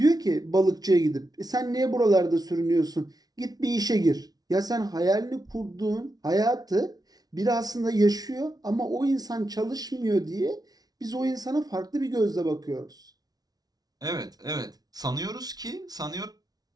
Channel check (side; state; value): left; late; 0.19 ms